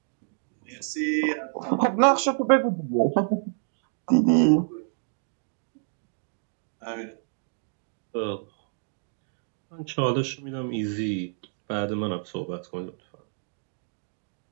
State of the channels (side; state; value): left; silent; digital silence